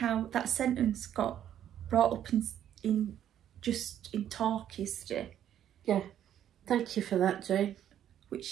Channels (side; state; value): left; quieter; 10.6 dB